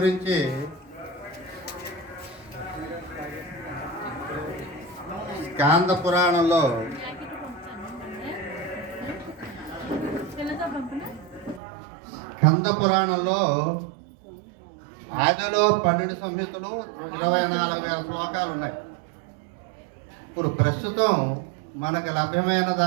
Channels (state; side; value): drops out; left; at 11.6 s